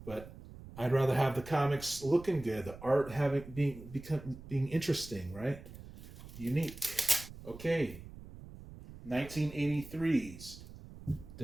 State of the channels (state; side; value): noise; right; rumble, 15 dB below the sound